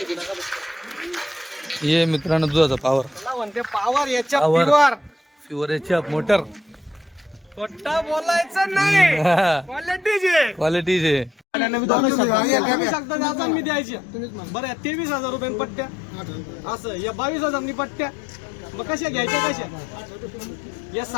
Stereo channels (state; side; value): drops out; right; at 11.4 s